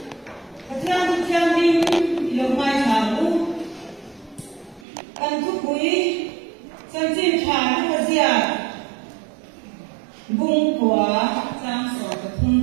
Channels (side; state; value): left; drops out; at 4.9 s